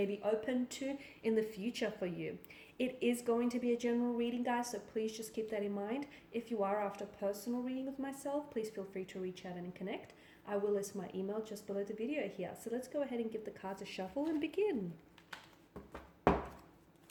be open to in the future for you. It is going to be a general reading, guys, so please just keep that in mind. If you are after a personal reading with myself, please feel free to reach out and connect. I will list my email just below the video here. So let's go ahead and give the cards a shuffle and begin.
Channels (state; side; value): identical; both; correlation 1.00